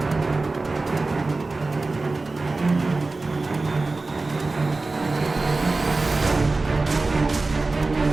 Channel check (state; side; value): quieter; left; 3.5 dB